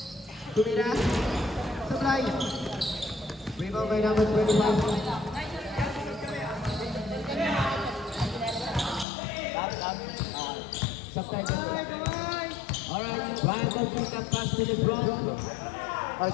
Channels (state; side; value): drops out; right; at 9.1 s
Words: Tumira. Supply. Rebound by number 25. Supply. Alright, Bible pick up pass to the front. Ay,